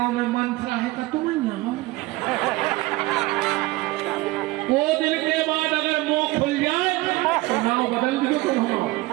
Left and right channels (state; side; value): quieter; left; 20.0 dB